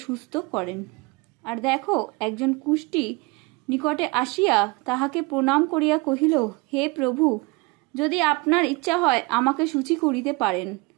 সুস্থ করেন। আর দেখো, একজন কুষ্ঠী নিকটে আসিয়া তাহাকে প্রণাম করিয়া কহিল, হে প্রভু, যদি আপনার ইচ্ছা হয় আমাকে শুচি করিতে পারেন।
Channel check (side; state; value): left; quieter; 26.0 dB